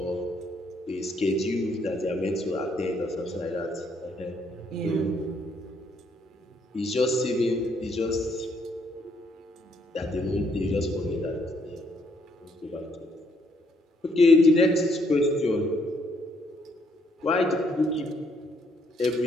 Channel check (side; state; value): both; normal; correlation 0.70